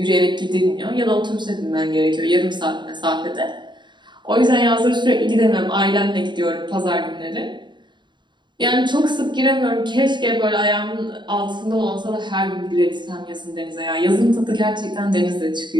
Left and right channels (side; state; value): left; late; 0.22 ms